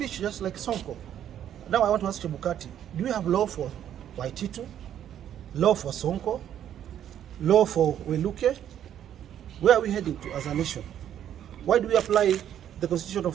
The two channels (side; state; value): left; quieter; 10.3 dB